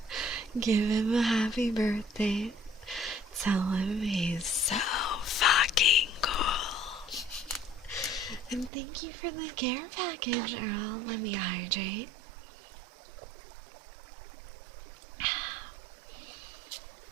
Give him a happy birthday. Tell him he's so fucking cool. And thank you for the care package, Earl. Let me hydrate.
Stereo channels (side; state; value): left; drops out; at 8.7 s